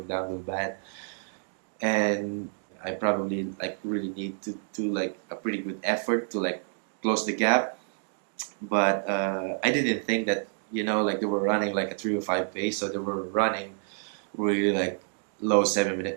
down real bad, and I probably like really need to do like a pretty good effort to like close the gap. But I didn't think that like they were running like a 3:05 pace, so they were running really like low 7 minute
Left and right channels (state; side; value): silent; left; digital silence